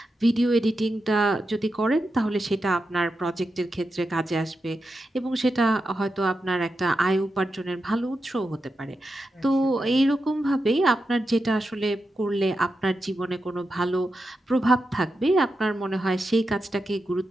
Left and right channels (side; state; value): both; normal; correlation 0.89